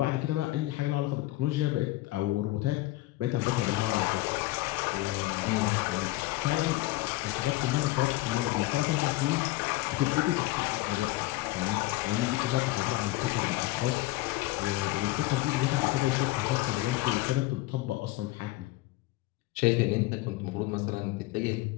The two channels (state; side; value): quieter; right; 18.6 dB